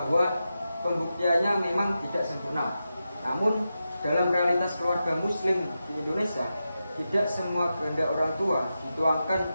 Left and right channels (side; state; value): both; inverted; correlation -0.90